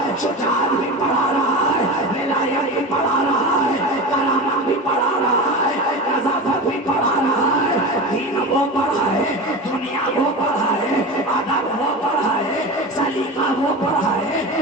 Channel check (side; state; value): both; normal; correlation 0.27